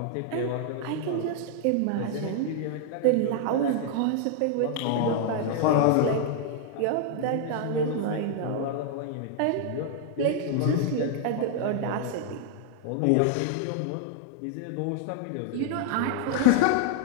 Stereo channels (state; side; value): different; both; correlation 0.00